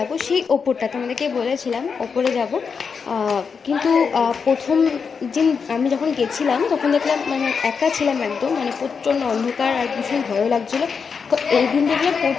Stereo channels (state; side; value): quieter; right; 5.8 dB